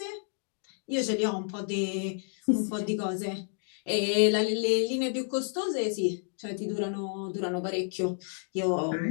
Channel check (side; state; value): right; silent; 58 dB below the other